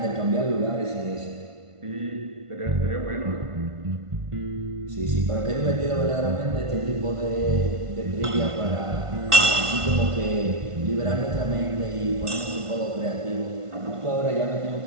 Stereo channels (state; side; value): late; left; 1.5 ms